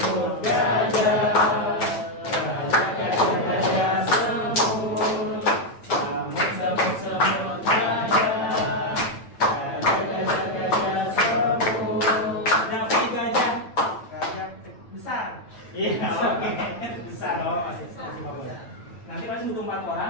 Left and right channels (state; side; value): late; right; 8.9 ms